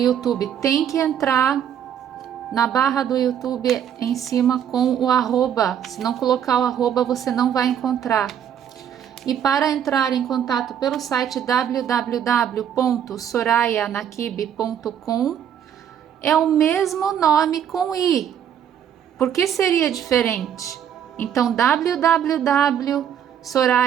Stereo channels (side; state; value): left; quieter; 9.2 dB